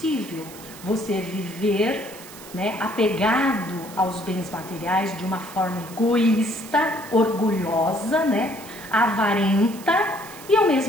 você viver, né, apegado aos bens materiais de uma forma egoísta, orgulhosa, né, avarenta, e ao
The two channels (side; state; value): right; noise; hiss, 17 dB below the sound